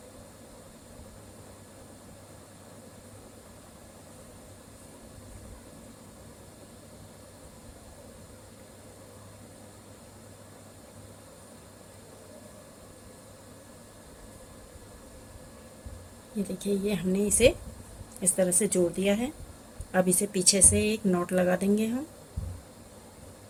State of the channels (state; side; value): identical; both; correlation 1.00